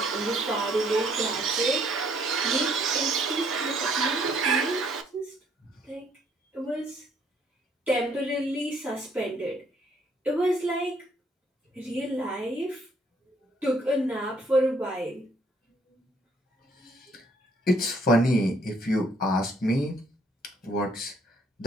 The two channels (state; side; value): normal; both; correlation 0.66